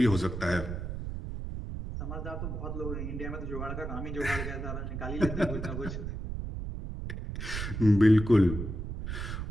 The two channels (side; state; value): right; noise; rumble, 5 dB below the sound